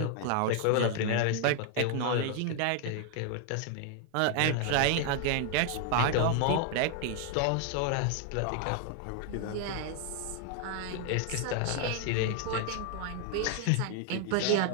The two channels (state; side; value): different; both; correlation 0.00